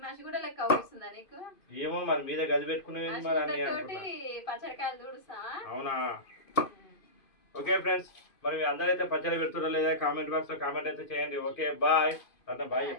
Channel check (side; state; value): right; late; 2.5 ms